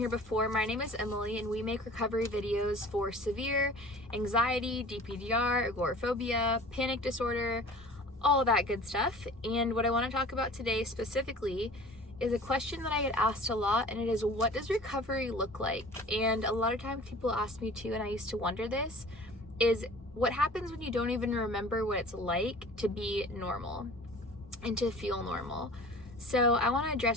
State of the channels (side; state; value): both; normal; correlation 0.44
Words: before, my name is Emily and we make recovery videos for severe anxiety, DPDR, agoraphobia, panic disorder, all that good stuff. And what I want to talk about today specifically is a question that I get asked a lot, and it is, what does recovery look like? And a lot of times people ask me too, and I used to wonder this, is what happens when you don't even remember what it's like to be normal and to feel normal. So I want to